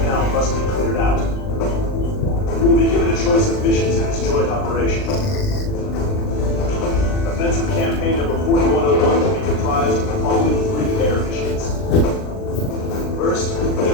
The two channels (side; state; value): right; late; 39 ms